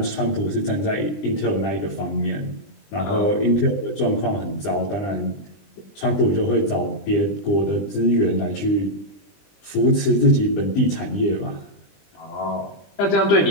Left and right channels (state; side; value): late; right; 20 ms